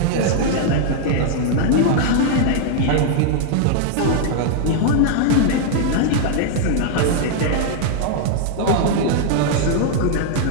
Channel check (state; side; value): different; both; correlation 0.00